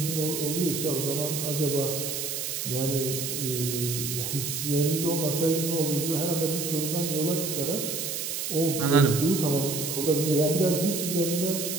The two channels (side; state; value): right; noise; hiss, 3 dB below the sound